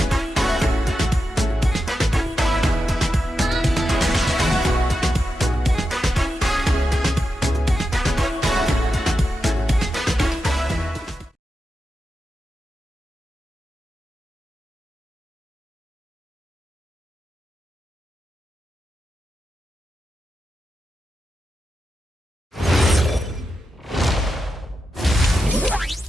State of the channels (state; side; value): normal; both; correlation 0.89